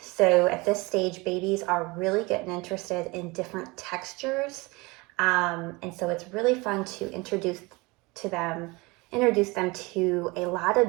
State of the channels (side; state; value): left; quieter; 24.6 dB